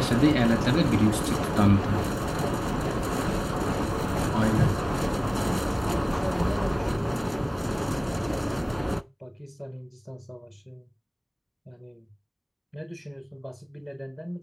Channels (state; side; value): identical; both; correlation 1.00